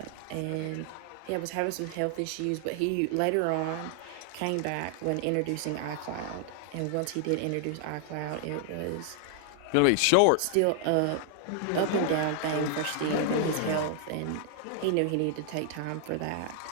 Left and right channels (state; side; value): different; both; correlation 0.00